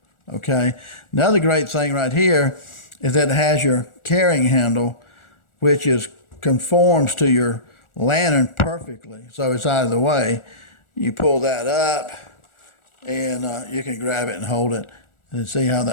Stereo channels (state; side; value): late; right; 1.4 ms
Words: Okay. Another great thing right here is that it has your carrying handle, which conforms to your lantern perfectly. So it's out of the way. You pull that up and you can grab it and hold it and see how